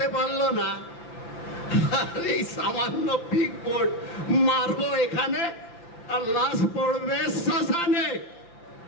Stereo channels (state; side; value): late; right; 5.9 ms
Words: পারলো না, আর এই সামান্য পিক বোর্ড মারবো এখানে আর লাশ পড়বে শ্মশানে।